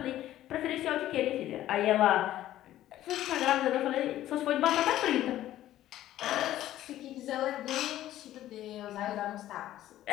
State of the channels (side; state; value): right; quieter; 13.5 dB